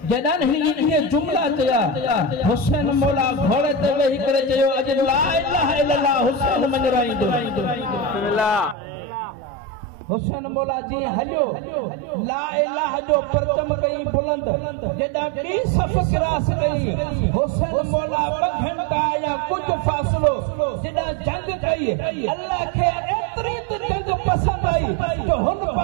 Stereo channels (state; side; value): drops out; left; at 8.8 s